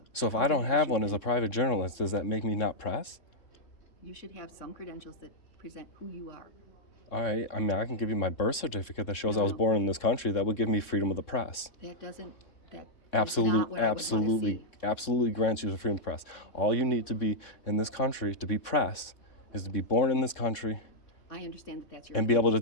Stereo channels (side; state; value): right; late; 3.7 ms